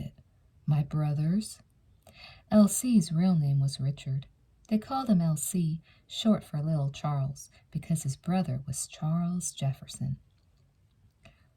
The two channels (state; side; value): identical; both; correlation 1.00